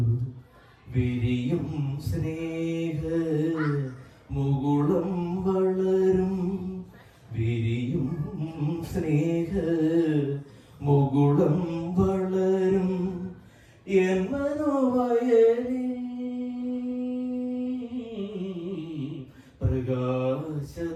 വിരിയും സ്നേഹ മുകുളം വളരും, വിരിയും സ്നേഹ മുകുളം വളരും എൻ മനോവയലിൽ.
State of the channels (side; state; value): both; identical; correlation 1.00